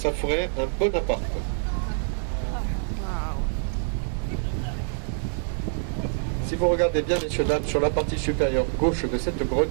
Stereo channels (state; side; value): silent; left; digital silence